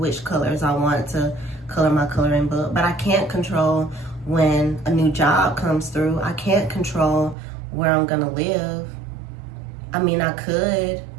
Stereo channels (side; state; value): left; drops out; at 7.4 s